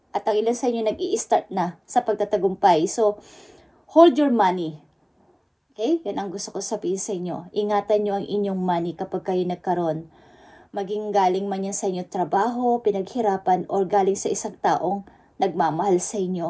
At ang ilan sa inyo nag-i-start na sa pagtatagumpay. So, hold your money. Okay? Yan ang gusto ko sabihin sa inyo. Ingatan nyo ang inyong money kapag kayo nagkaroon. Maging galing man yan sa inyo trabaho, pinaghirapan, or galing sa isang taong nagmamahal sa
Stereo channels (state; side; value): identical; both; correlation 1.00